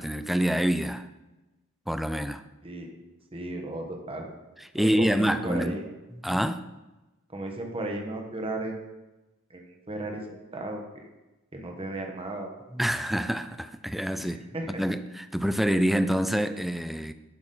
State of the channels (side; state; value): both; normal; correlation 0.90